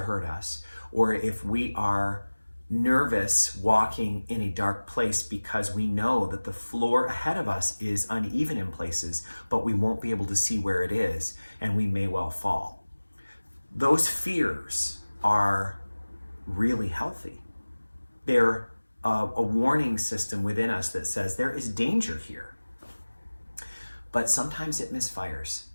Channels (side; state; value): both; inverted; correlation -1.00